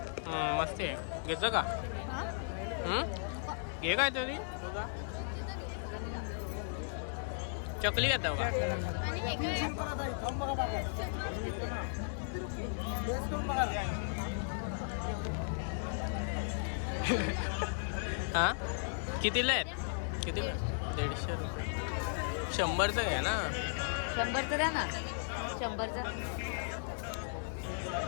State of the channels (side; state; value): right; silent; 54 dB below the other